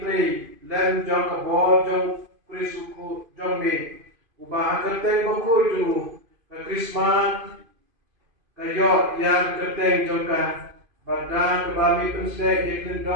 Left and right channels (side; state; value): left; late; 2.5 ms